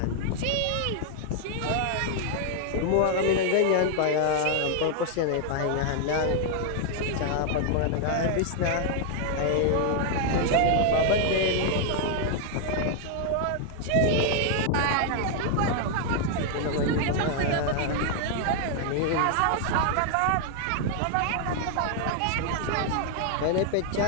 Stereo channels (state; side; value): different; both; correlation 0.00